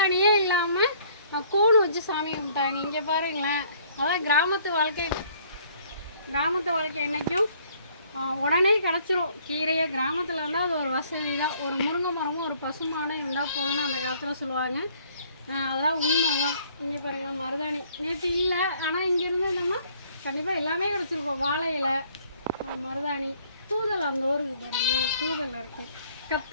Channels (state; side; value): inverted; both; correlation -0.60